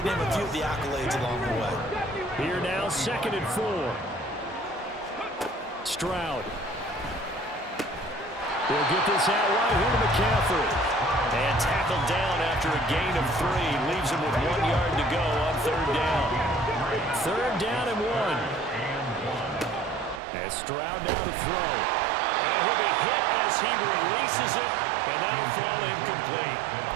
name a few of the accolades along the way. Here now, 2nd and 4. Stroud. We'll get this out wide here to McCaffrey. And tackled down after a gain of 3. Leaves him with 1 yard to go on 3rd down. 3rd down and 1. And Stroud now to throw. And he'll be hit as he releases it. And that'll fall incomplete.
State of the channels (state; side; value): drops out; left; at 20.2 s